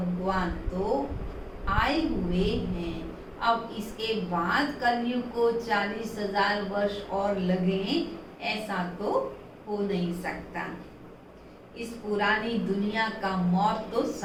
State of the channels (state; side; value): identical; both; correlation 1.00